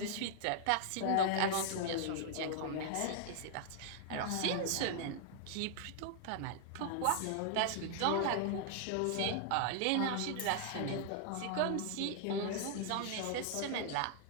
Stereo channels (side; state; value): both; different; correlation -0.01